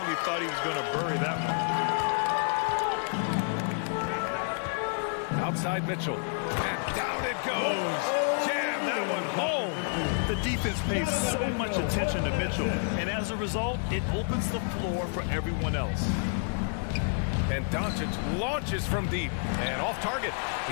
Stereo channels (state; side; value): silent; right; 58 dB below the other